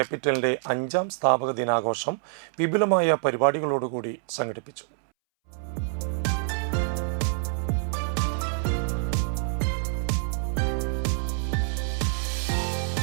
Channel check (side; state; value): left; silent; 60 dB below the other